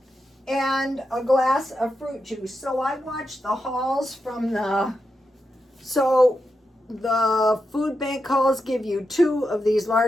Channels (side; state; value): both; normal; correlation 0.87